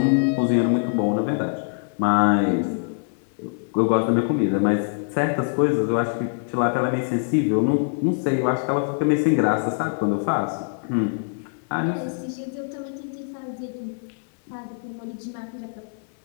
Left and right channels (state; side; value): silent; right; 61 dB below the other